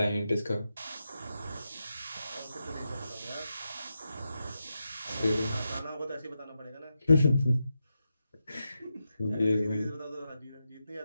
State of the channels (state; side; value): inverted; both; correlation -0.88